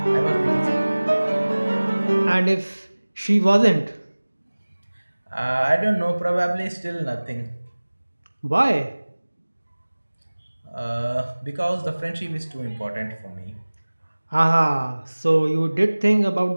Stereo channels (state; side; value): inverted; both; correlation -1.00